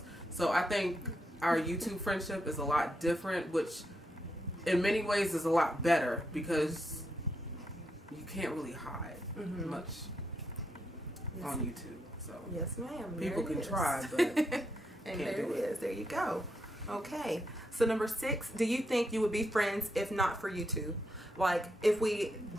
So I think our YouTube friendship is a lot different, which in many ways is a lot better, because you can't really hide much on YouTube. So yes, ma'am. People can try, but and there it is. There you go. Okay. So number 6, do you think you would be friends if not for YouTube? Like, if we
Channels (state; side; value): normal; both; correlation 0.81